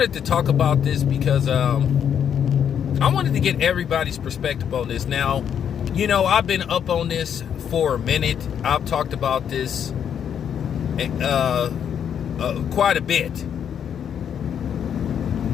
to talk about this because I wanted to get everybody's perspective on this. Now, you know, I've been up on this for a minute. I've talked about this quite a bit.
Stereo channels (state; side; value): quieter; right; 8.5 dB